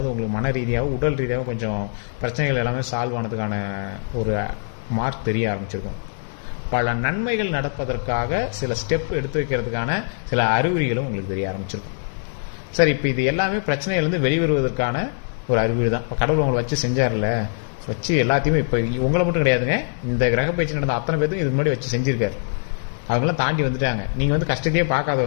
உங்களுக்கு மன ரீதியாகவும் உடல் ரீதியாகவும் கொஞ்சம் பிரச்சனைகள் எல்லாமே சால்வ் ஆனதுக்கான ஒரு மார்க் தெரிய ஆரம்பிச்சிருக்கும். பல நன்மைகள் நடப்பதற்காக சில ஸ்டெப்பு எடுத்து வைக்கிறதுக்கான சில அறிகுறிகளும் உங்களுக்கு தெரிய ஆரம்பிச்சிருக்கும். சார் இப்போ இது எல்லாமே பிரச்சனையிலேருந்து வெளிவருவதற்கான ஒரு அறிகுறி தான். இப்போ கடவுள் உங்களை வச்சு செஞ்சார்ல, வச்சு எல்லாத்தையுமே இப்போ உங்களை மட்டும் கிடையாதுங்க, இந்த கிரக பயிற்சி நடந்த அத்தனை பேருக்கும் இதுக்கு முன்னாடி வச்சு செஞ்சுருக்கார். அவங்களாம் தாண்டி வந்துட்டாங்க. நீங்கள் வந்து கஷ்டத்தையே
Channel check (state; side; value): silent; right; digital silence